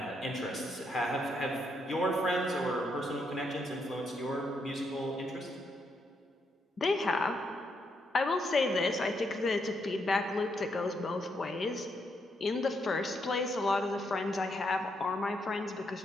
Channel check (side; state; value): both; normal; correlation 0.78